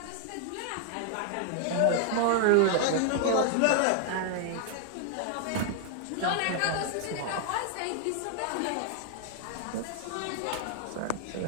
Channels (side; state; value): both; different; correlation 0.00